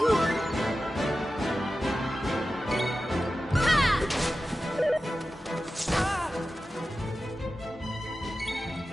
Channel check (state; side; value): normal; both; correlation 0.93